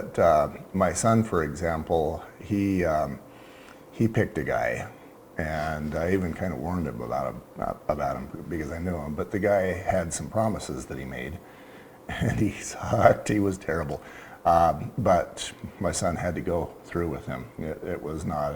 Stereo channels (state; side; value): identical; both; correlation 1.00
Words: my son, for example, he picked a guy, and I even kind of warned him about him because I knew him. But the guy had some promises that he made, and he sucked. He was terrible. But my son had to go through with him. It was not